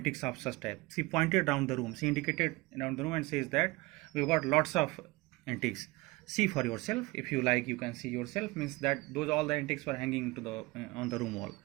of such type. She pointed down the room. She indicated down the room and says that we've got lots of antiques. See for yourself. If you like, you can see yourself. Means that those all the antiques were hanging to the on the room wall.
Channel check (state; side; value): quieter; left; 22.4 dB